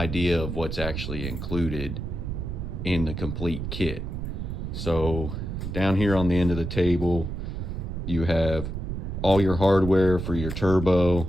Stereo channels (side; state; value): right; noise; rumble, 5 dB below the sound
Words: of what's actually included in the complete kit. So down here on the end of the table, you have all your hardware for your turbo,